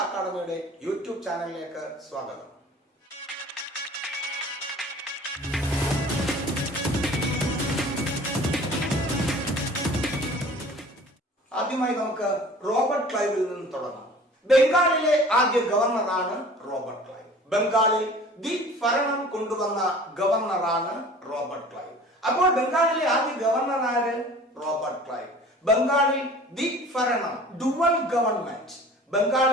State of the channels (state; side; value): normal; both; correlation 0.45